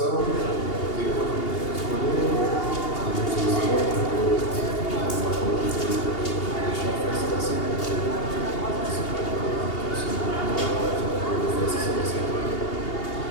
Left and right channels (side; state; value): right; late; 2.8 ms